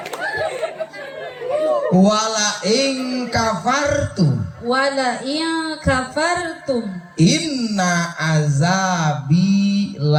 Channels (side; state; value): both; identical; correlation 1.00